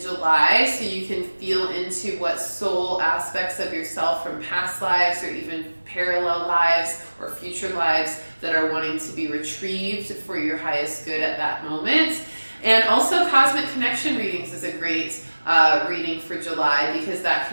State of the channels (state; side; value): inverted; both; correlation -1.00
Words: so you can feel into what soul aspects of yourself from past lives or even parallel lives or future lives that are wanting to be retrieved for your highest good at that moment. And also Cosmic Connection readings is a great reading for July, because that